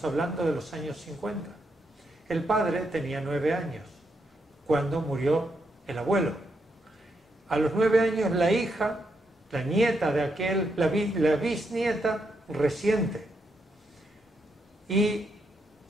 hablando de los años 50. El padre tenía 9 años cuando murió el abuelo. A los 9 años la hija, la nieta de aquel, la bisnieta reciente. Y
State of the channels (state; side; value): normal; both; correlation 0.80